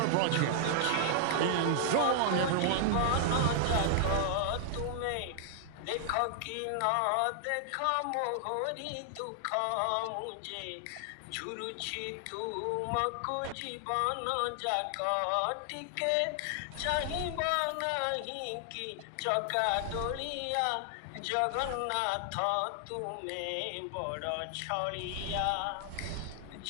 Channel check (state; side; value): different; both; correlation 0.00